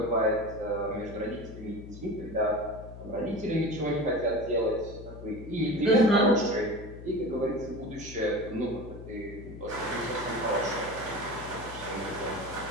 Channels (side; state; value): left; noise; hum, 13 dB below the sound